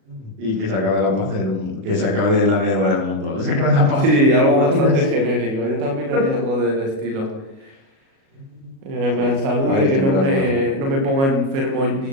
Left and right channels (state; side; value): late; left; 37 ms